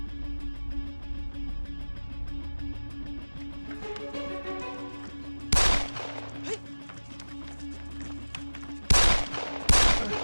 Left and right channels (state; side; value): inverted; both; correlation -1.00